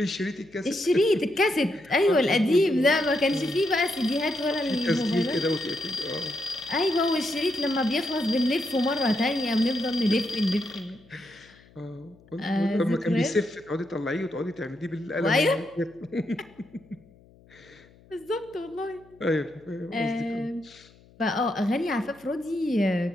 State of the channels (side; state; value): left; noise; hum, 27 dB below the sound